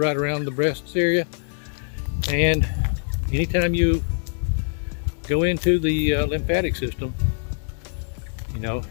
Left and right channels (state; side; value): silent; right; digital silence